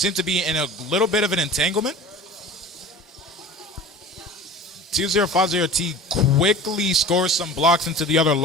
to be in a little bit of an entanglement. 2050T quickly scores some blocks into the other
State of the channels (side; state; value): both; normal; correlation 0.39